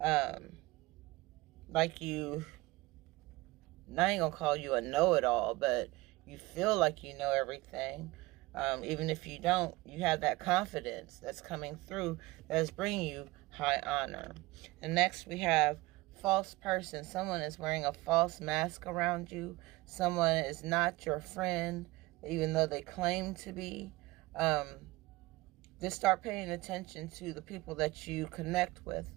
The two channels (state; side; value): quieter; left; 20.7 dB